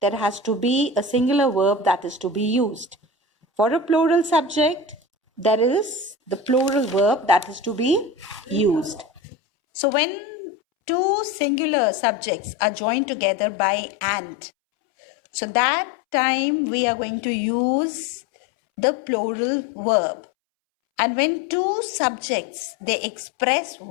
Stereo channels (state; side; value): drops out; right; at 9.2 s